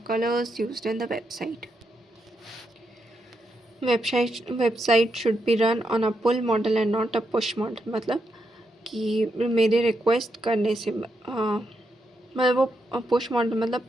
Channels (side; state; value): both; normal; correlation 0.82